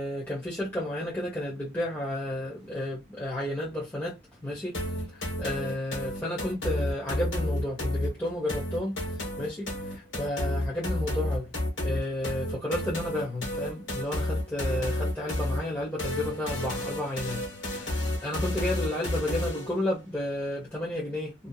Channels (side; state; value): both; normal; correlation 0.71